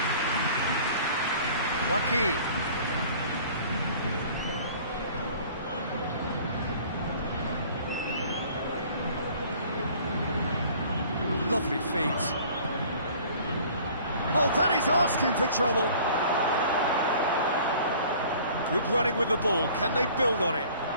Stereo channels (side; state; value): both; inverted; correlation -0.50